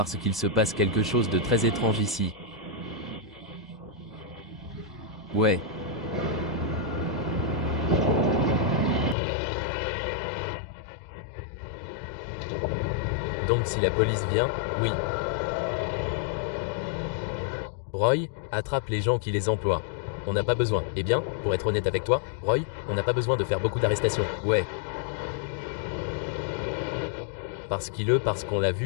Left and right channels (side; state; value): right; drops out; at 9.2 s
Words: qu'il se passe quelque chose de très étrange ici. Ouais. Donc si la police vient, oui. Roy, attrape les gens qui les emploient. On n'a pas besoin. Eh bien, pour être honnête avec toi, Roy, on n'a pas besoin de faire beaucoup d'arrestations. Ouais. Parce qu'on l'a